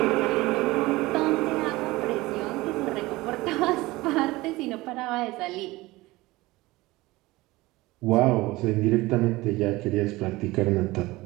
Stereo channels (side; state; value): left; quieter; 20.1 dB